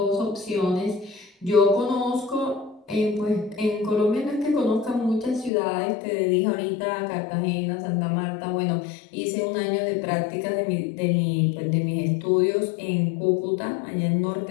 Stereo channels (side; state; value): right; drops out; at 5.5 s